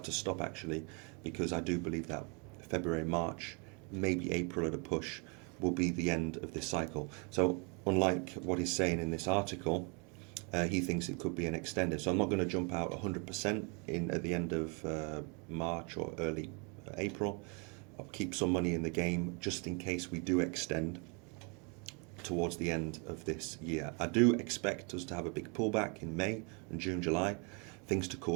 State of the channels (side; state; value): left; quieter; 34.1 dB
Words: to stop actually, because I do believe that February, March, maybe April at a push will be the end of this cycle. So unlike what he's saying in this article, he thinks it could be an extended. So I'm not going to jump out 100% at the end of March or early April. I'll keep some money in the game just in case we do extend towards the end of this year. I do expect us to have a big pullback in May and June, July, things to